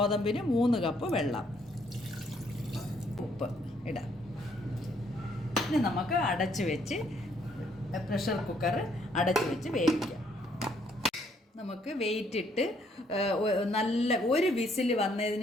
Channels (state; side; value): normal; both; correlation 0.68